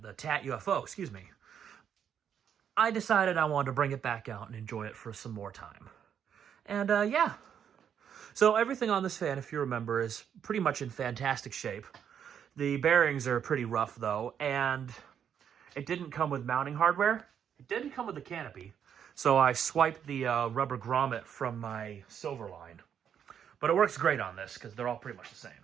TAT UFO, excuse me, I decided I wanted to bring it back out and enjoy it for some more time. And yeah. So everything on this fan, if you remember, is pretty much in fantastic shape. The bearings are pretty rough though, and it didn't come with mounting hardware. It didn't come with the canopy. So I swiped the rubber grommet from my silver line. But it works great on this because they're all pretty much the same.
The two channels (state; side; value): quieter; left; 8.4 dB